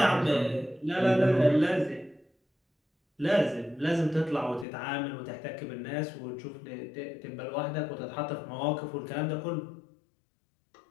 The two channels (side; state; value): right; drops out; at 4.7 s